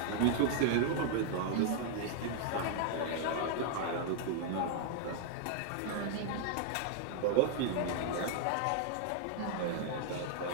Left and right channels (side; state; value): both; different; correlation -0.01